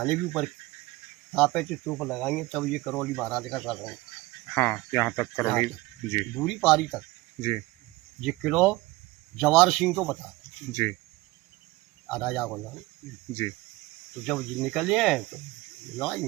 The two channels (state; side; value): quieter; left; 20.0 dB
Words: भी ऊपर पे तूप लगाएंगे तब ये करौली महाराज का शासन है। हाँ, यहाँ तक करौली जी, दूरी पारी तक जी ये किलो जवार सिंह को बता जी राजा को नाम। जी तो जब ये निकले हैं तो लड़ाई